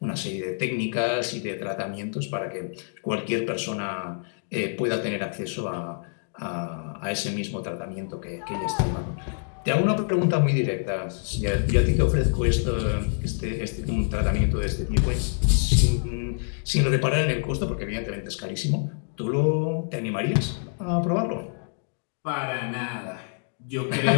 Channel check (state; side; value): silent; right; digital silence